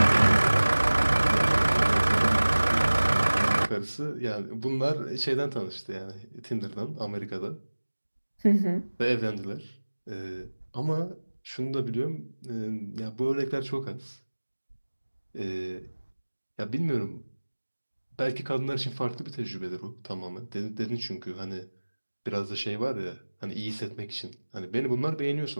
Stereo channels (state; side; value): inverted; both; correlation -1.00